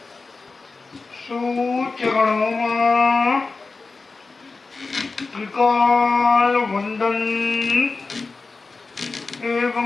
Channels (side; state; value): right; quieter; 4.0 dB